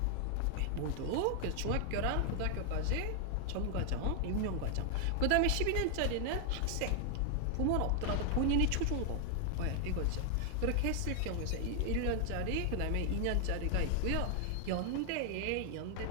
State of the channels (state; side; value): different; both; correlation 0.00